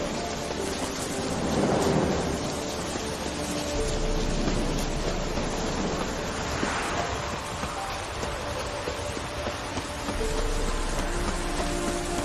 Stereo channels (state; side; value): identical; both; correlation 1.00